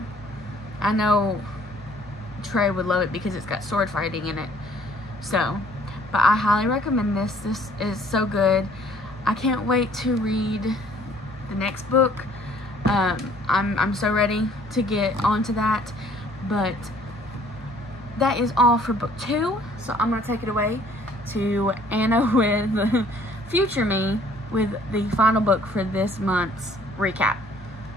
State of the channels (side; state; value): both; normal; correlation 0.58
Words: know Trey would love it because it's got sword fighting in it. So, but I highly recommend this. This is so good. I can't wait to read the next book. I'm so ready to get onto that. But that is all for book 2. So I'm going to take it away to Anna with future me with the final book for this month's recap.